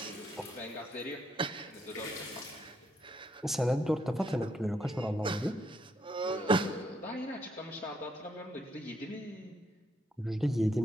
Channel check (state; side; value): normal; both; correlation 0.74